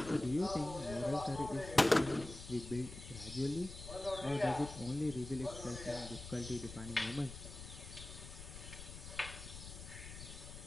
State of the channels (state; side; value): noise; left; rumble, 12 dB below the sound